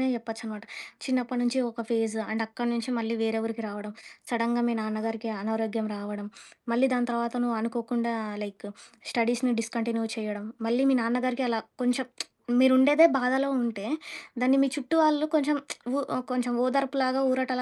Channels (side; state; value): both; identical; correlation 1.00